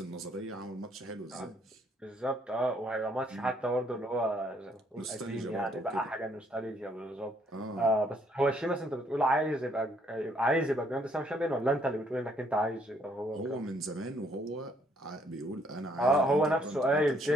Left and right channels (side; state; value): both; normal; correlation 0.68